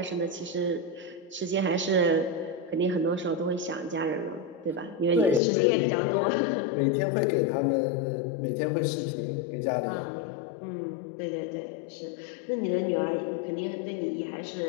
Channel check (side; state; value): right; drops out; at 5.4 s